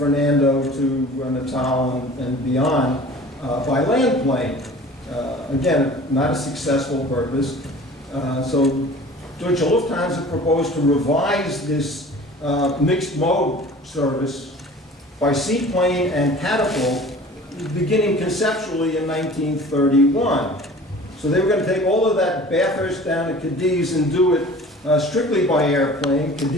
to Natal and beyond by land plane. Again, not a successful purpose. So Deutsche Lufthansa proposed to revise this mixed mode service by seaplane and catapult, beginning conceptually in 1931. So they were going to take all of that Bathurst down to Cadiz and do it strictly by airplane.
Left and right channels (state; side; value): normal; both; correlation 0.44